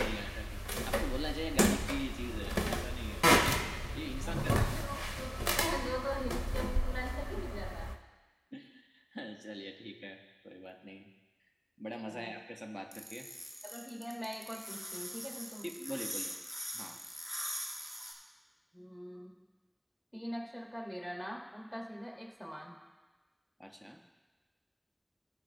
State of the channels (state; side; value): identical; both; correlation 1.00